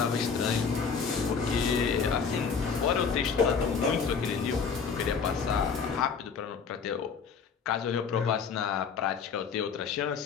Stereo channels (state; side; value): quieter; right; 5.9 dB